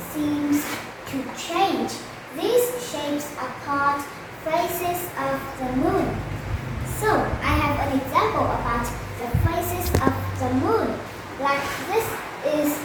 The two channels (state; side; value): identical; both; correlation 1.00